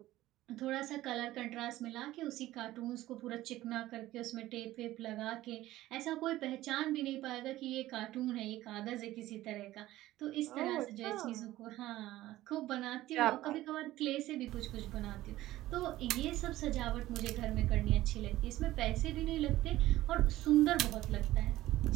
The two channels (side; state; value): left; quieter; 15.8 dB